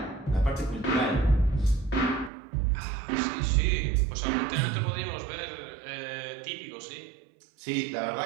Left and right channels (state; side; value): drops out; left; at 2.3 s